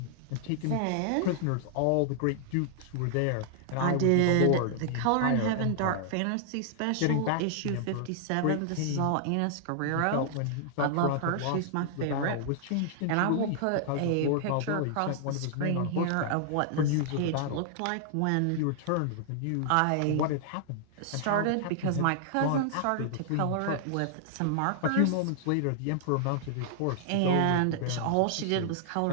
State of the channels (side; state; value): both; different; correlation -0.01